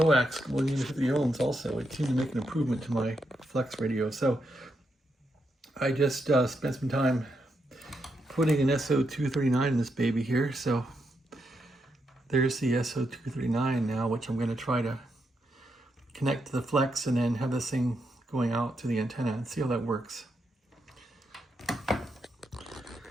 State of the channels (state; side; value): normal; both; correlation 0.82